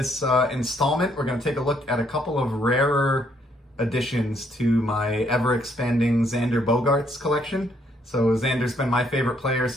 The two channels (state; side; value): normal; both; correlation 0.70